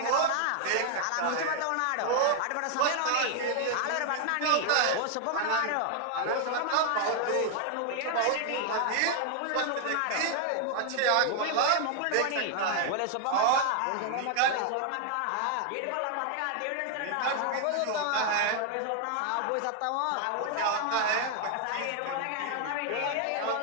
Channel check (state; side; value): different; both; correlation 0.00